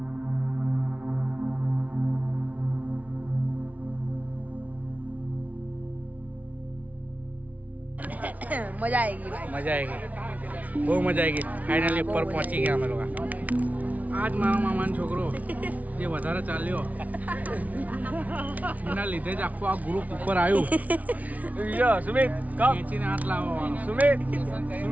मजा आएगी भाई. મજા આવી ગઈ, બહુ મજા આવી ગઈ. ફાઇનલી ઉપર પહોંચી ગયા અમે લોકો. આજ મારો મામાનો છોકરો જે વધારે ચાલ્યો એના લીધે જ આખું આ ગ્રુપ ઉપર આવ્યું. સુમિત ખેંચીને હાથ લાવવાનો. સુમિત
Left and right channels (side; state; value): left; late; 0.071 ms